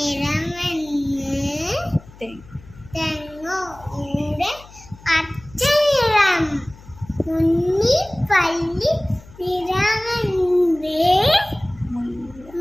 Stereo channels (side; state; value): left; noise; hum, 21 dB below the sound